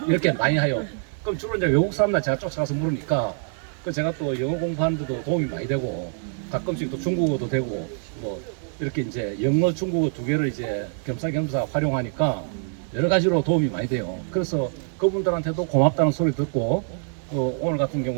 이렇게 많이 해요. 그럼 주로 이제 외국 사람들 제가 쫓아가서 물으니까 그 제가 또 영어 공부하는데도 도움이 많이 되고 가끔씩 또 중국어도 되고 뭐 이렇게 이제 영어 중국어 두 개를 이제 겸사겸사 활용하니까 여러 가지로 도움이 많이 돼요. 그래서 그분들한테도 고맙다는 소리 듣고 오늘 같은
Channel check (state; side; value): silent; left; 62 dB below the other